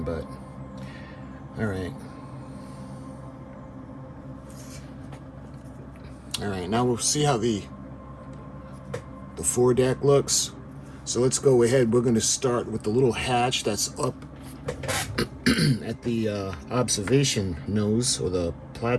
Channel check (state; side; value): identical; both; correlation 1.00